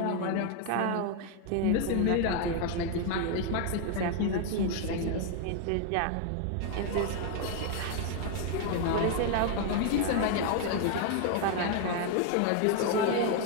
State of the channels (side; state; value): both; different; correlation 0.00